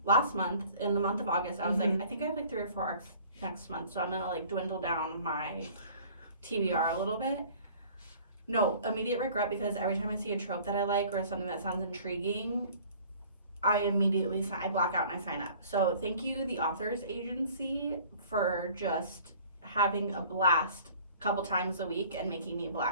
last month, in the month of August, I was like, I think I have like 3 or 4 ARCs next month, so I'm gonna like dwindle down my TBR a little bit. No, immediate regret, because every time I see a trope that I like or something that sounds intriguing, I immediately I black out and I sign up. So thank you, the Authors Agency, for just having a blast a couple times a week and making me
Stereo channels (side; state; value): both; inverted; correlation -0.50